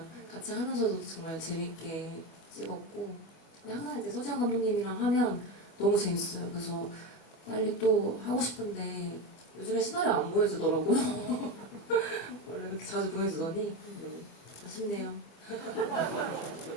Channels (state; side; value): late; right; 24 ms